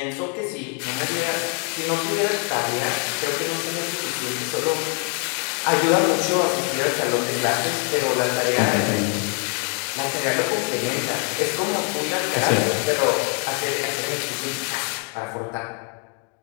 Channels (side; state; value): right; quieter; 39.7 dB